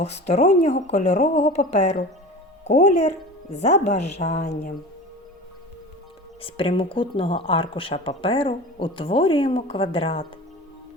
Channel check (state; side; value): normal; both; correlation 0.35